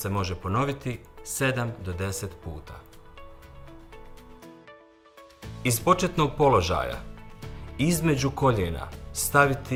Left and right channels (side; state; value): both; identical; correlation 1.00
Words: može ponoviti 7 do 10 puta. Iz početnog položaja između koljena